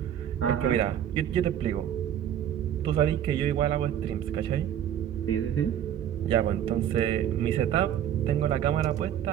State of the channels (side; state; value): left; quieter; 10.3 dB